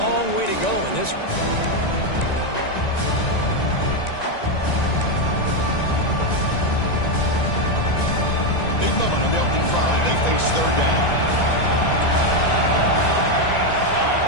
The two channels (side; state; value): right; late; 1.9 ms